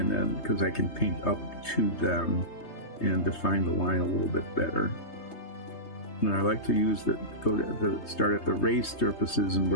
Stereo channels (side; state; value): right; late; 3.2 ms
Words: then because I can paint up to them and define the line a little bit better. And I like to start at the raised surfaces and